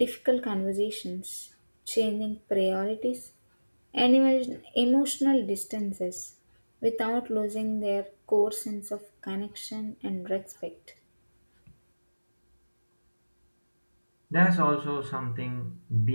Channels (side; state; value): both; inverted; correlation -1.00